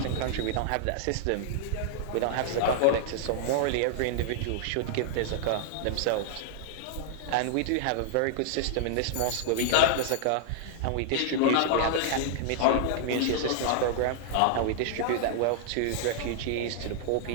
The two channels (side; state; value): both; different; correlation -0.01